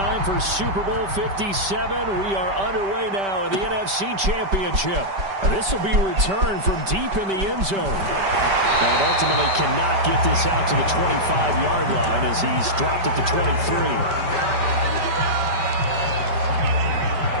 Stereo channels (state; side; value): late; left; 5.1 ms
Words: for Super Bowl 57, we are underway now in the NFC Championship. This will be returned from deep in the end zone. And ultimately cannot get this out to the 25-yard line as he's dropped at the 23.